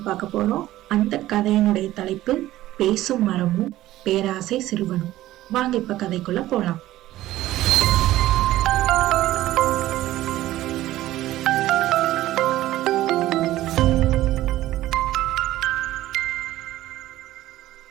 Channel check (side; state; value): left; quieter; 15.2 dB